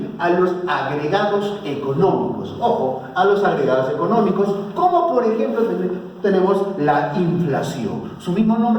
a los agregados económicos. Ojo, a los agregados económicos, como por ejemplo tenemos la inflación. Su mismo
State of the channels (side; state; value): both; identical; correlation 1.00